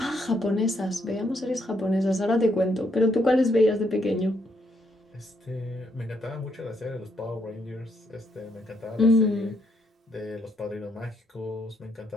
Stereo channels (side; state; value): both; normal; correlation 0.74